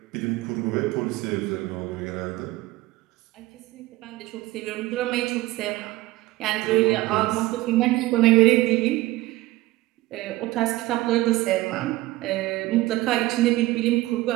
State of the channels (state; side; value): quieter; left; 18.2 dB